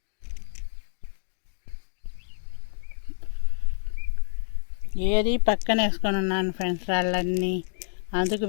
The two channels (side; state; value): right; silent; digital silence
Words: ఏది పక్కన వేసుకొని ఉన్నాను ఫ్రెండ్స్ రాళ్ళన్నీ. అందుకు